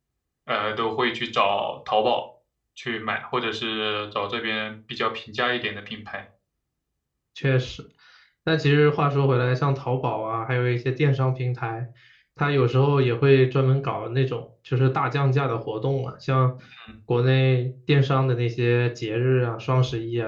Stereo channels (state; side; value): identical; both; correlation 1.00